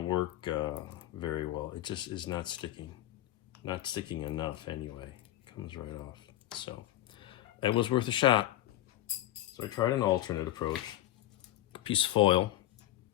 work very well. It just is not sticking enough anyway. It comes right off. So it was worth a shot. So I tried an alternate approach. A piece of foil,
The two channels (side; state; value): right; quieter; 14.0 dB